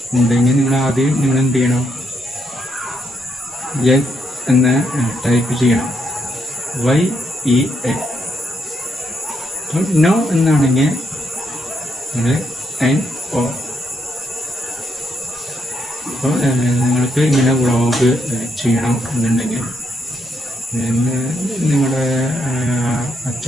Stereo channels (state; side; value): normal; both; correlation 0.77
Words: ഉണ്ടെങ്കിൽ നിങ്ങൾ ആദ്യം നിങ്ങൾ എന്ത് ചെയ്യണം, യെസ് എന്ന് ടൈപ്പ് ചെയ്യണം. YES. നോ എന്നാണെങ്കിൽ നിങ്ങൾ NO. അപ്പോൾ നിങ്ങൾക്ക് ഇങ്ങനെ വ്ളോഗ് ചെയ്യണം എന്നുണ്ടെങ്കിൽ, നിങ്ങളുടെ